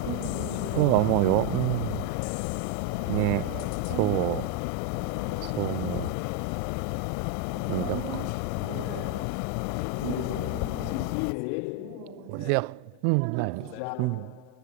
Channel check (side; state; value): both; different; correlation 0.02